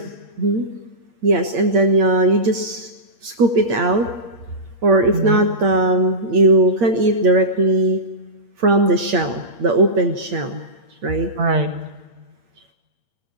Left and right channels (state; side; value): late; left; 8.6 ms